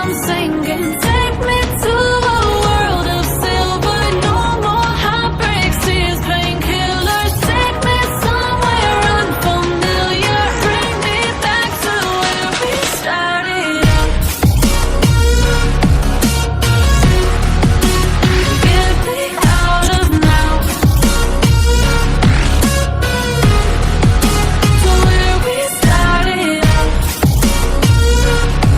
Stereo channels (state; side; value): identical; both; correlation 1.00